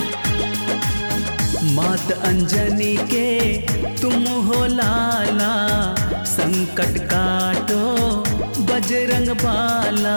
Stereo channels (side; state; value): both; inverted; correlation -1.00